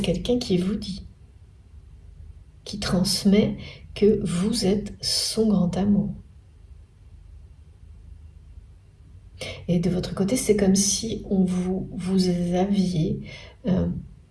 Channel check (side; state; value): both; identical; correlation 1.00